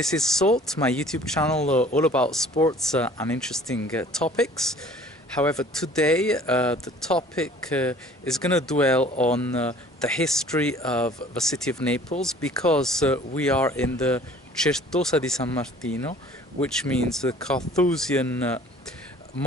is Salt, my YouTube channel all about sports and interesting topics. However, today the topic is going to dwell on the history of the city of Naples, because we are in the Certosa di San Martino, which means the Carthusian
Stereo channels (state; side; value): normal; both; correlation 0.51